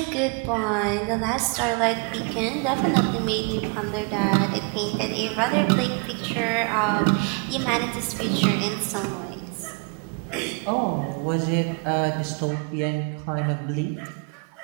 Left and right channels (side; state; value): left; quieter; 35.4 dB